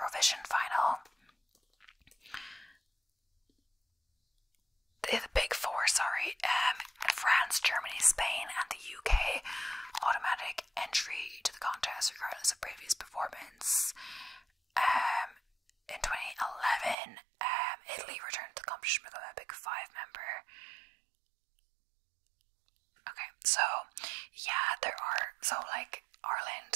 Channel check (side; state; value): left; drops out; at 16.9 s